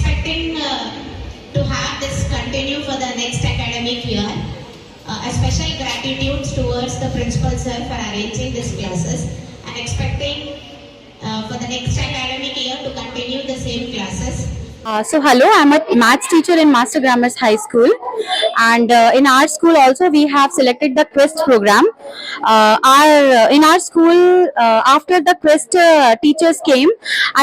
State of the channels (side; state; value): both; identical; correlation 1.00